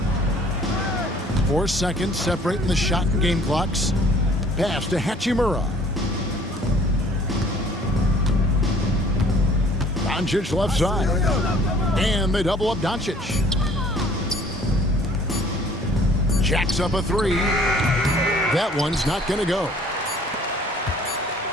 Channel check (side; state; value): both; normal; correlation 0.55